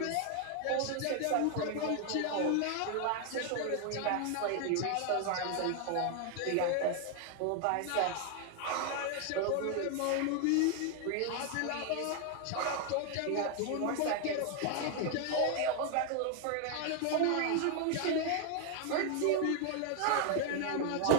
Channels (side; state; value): both; different; correlation 0.00